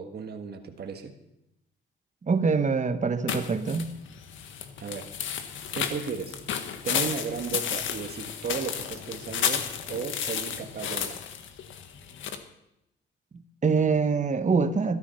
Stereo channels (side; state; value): both; normal; correlation 0.40